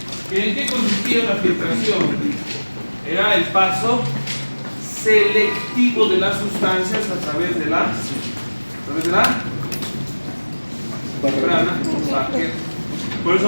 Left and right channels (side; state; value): both; inverted; correlation -1.00